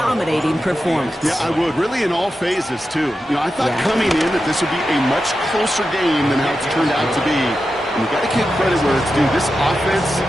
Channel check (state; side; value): normal; both; correlation 0.90